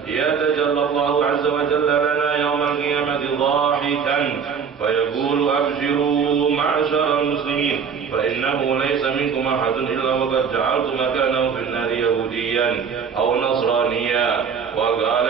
يتجلى الله عز وجل لنا يوم القيامة ضاحكا فيقول: أبشروا معشر المسلمين، فإنه ليس منكم أحد إلا وقد جعلت مكانه في النار يهوديا أو نصرانيا. وقال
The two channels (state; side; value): quieter; left; 6.6 dB